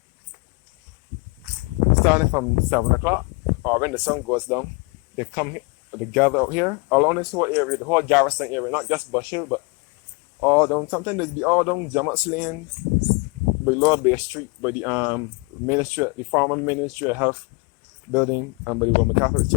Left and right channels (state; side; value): quieter; right; 28.8 dB